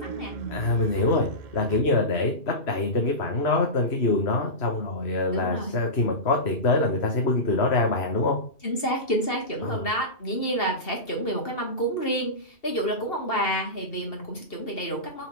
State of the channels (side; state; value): right; late; 2.7 ms